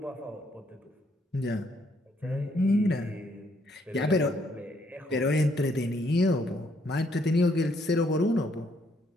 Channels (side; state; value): both; normal; correlation 0.71